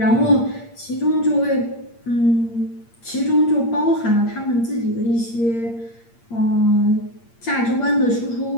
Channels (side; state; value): right; late; 8.7 ms